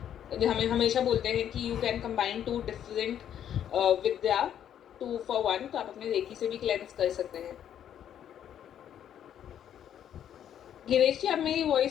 हमें हमेशा बोलते हैं कि you can combine 2 different Vidya 2 for 1, तो आप अपने रेखी से भी क्लेंस कर सकते हैं. गिरीश जी, अब मेरी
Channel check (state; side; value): quieter; right; 9.9 dB